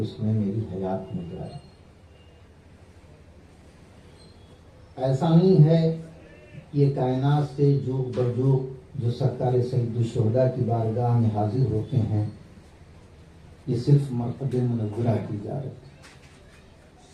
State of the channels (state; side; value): identical; both; correlation 1.00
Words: اس نے میری حیات میں زیارت کی۔ ایسا نہیں ہے یہ کائنات سے جوگ بجوگ جو سرکار سید الشہداء کی بارگاہ میں حاضر ہوتے ہیں، یہ صرف مرقد منورہ کی زیارت ہے